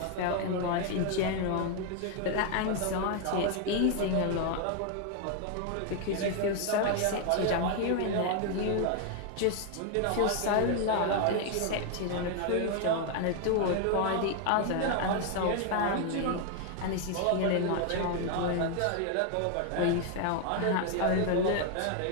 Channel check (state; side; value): different; both; correlation 0.00